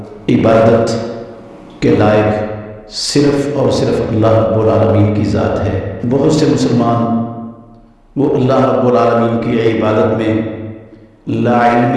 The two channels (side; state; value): both; identical; correlation 1.00